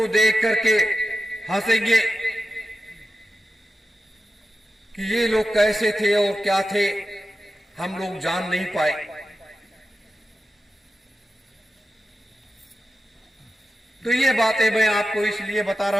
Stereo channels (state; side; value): normal; both; correlation 0.92